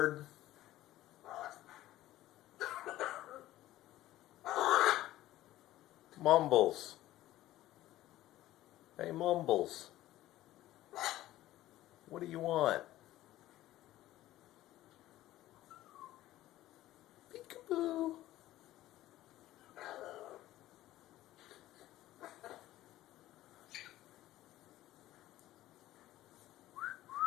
Mumbles. Hey, Mumbles. What do you want? Peekaboo.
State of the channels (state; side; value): quieter; right; 15.1 dB